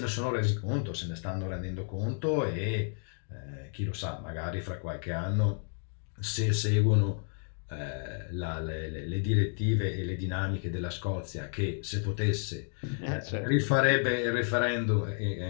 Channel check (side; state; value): right; silent; 57 dB below the other